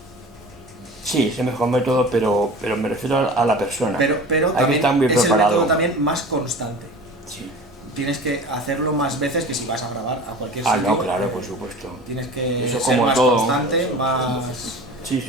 Sí, es el mejor método, pero me refiero a la persona. Pero hay también que estar muy es el preparado. método también más constante. Sí. Tienes que hacerlo más veces que si vas a grabar a cualquier sitio. No, claro, por supuesto. Tienes que Eso ser como más todo. constante, más...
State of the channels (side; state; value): both; normal; correlation 0.38